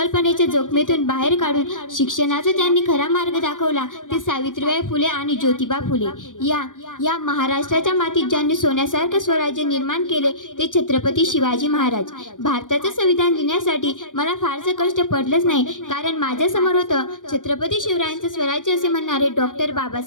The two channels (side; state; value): right; late; 0.88 ms